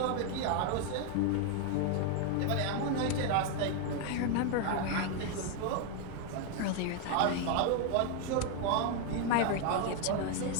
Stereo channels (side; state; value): both; different; correlation 0.01